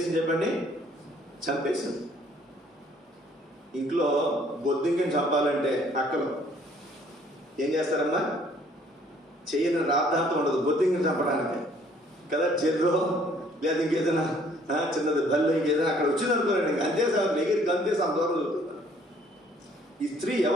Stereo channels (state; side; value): normal; both; correlation 0.60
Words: చెప్పండి? చంపేసింది. ఇంట్లో బొద్దింకని చంపాలంటే అక్కలు ఏం చేస్తారమ్మా? చెయ్యని రాద్ధాంతం ఉండదు బొద్దింకని చంపడానికి కదా. చెర్రో లేదా ఇంకేదైనా చిన్నది బల్లో ఇంకేదైనా అక్కడ వచ్చింది అనుకోరండి, ఇంక అంతే సార్ దగ్గరికి అంతేసి అంత దూరం చదువుతున్నారు. ఈ స్త్రీ